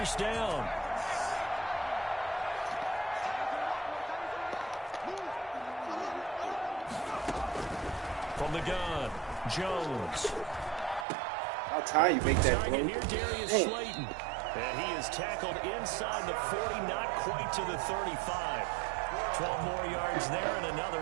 down. From the gun, Jones. How time you make that, bro? Here, Darius Slayton. And he is tackled inside the 40, not quite to the 35. 12 more yards there and another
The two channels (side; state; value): left; drops out; at 11.1 s